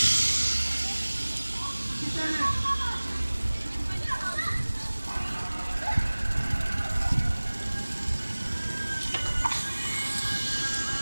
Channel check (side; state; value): both; inverted; correlation -1.00